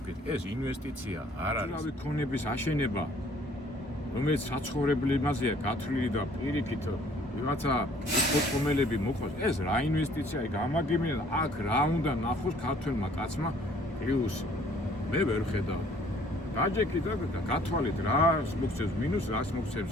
თქვით ეს ინვესტიცია არ არის რავი ქონების აშენება რომელიც საცხოვრებელი იმაზეა გათვლილი და პირიქით ვიღაცა პორტფოლიოები მოყავს, ეს რა ინვესტიციაა, გამაგებინა აქ რა უნდა ნახოს ქართველმა კაცმა პლუსი. მე ვერ ხედავ. დაჯექი და გათვალეთ რა მოგცემს მინუს, რას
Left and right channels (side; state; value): both; normal; correlation 0.57